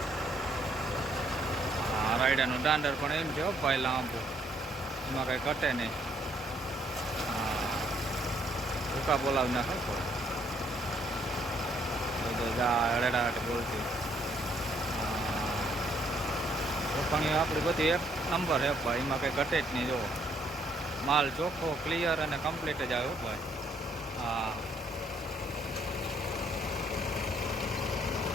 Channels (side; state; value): both; normal; correlation 0.68